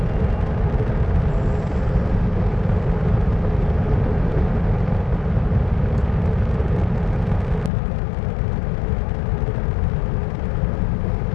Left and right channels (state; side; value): drops out; right; at 7.7 s